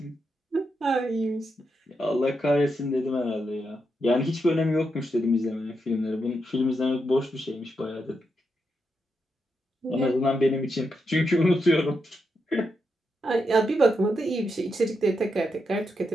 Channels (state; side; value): normal; both; correlation 0.84